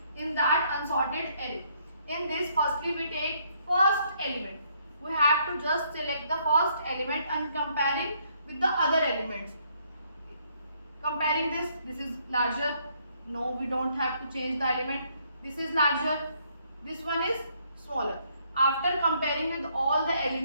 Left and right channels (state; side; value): inverted; both; correlation -0.70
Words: in that unsorted array. In this, firstly we take first element. We have to just select the first element and comparing with the other elements. Comparing this is larger. No, we don't have to change the element. This is larger. This one is smaller. After comparing with all the